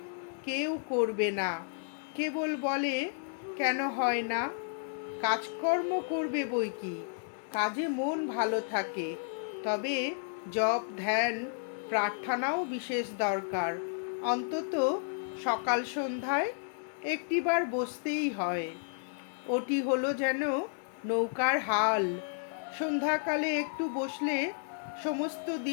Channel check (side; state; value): right; silent; digital silence